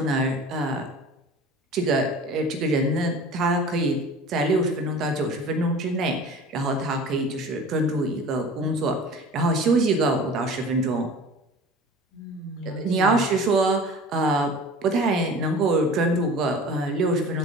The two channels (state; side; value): normal; both; correlation 0.41